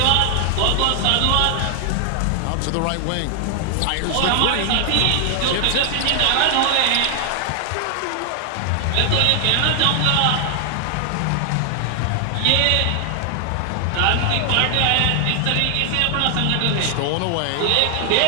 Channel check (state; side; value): different; both; correlation 0.00